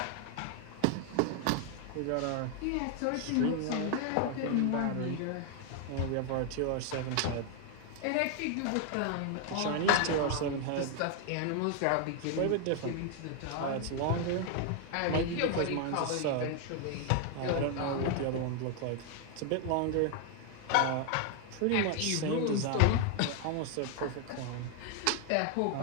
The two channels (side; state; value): both; different; correlation 0.00